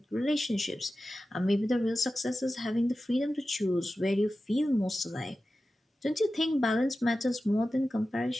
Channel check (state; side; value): normal; both; correlation 0.94